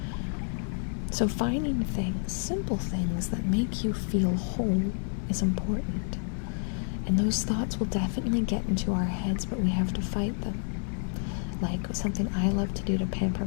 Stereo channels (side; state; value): right; silent; 57 dB below the other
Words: So finding things, simple things that make you feel whole is important. And those thoughts will definitely get into our heads, but we have to fight them. Like, something I love to do to pamper